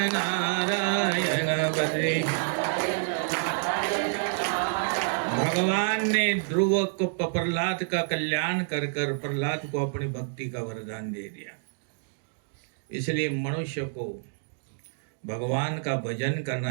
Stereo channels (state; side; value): silent; left; digital silence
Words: नारायण बद्री. भगवान ने ध्रुव को प्रहलाद का कल्याण कर प्रहलाद को अपनी भक्ति का वरदान दे दिया. इसलिए मनुष्य को भगवान का भजन